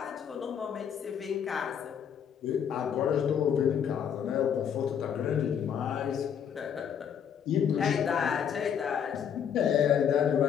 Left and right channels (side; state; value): right; quieter; 8.2 dB